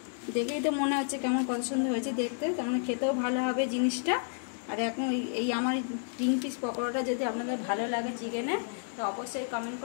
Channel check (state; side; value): silent; right; 57 dB below the other